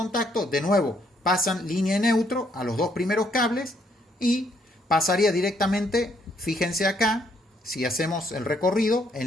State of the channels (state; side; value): normal; both; correlation 0.70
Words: de nuevo, pasan línea neutro a los dos primeros cables y pasaría directamente, fíjense acá, si hacemos el recorrido,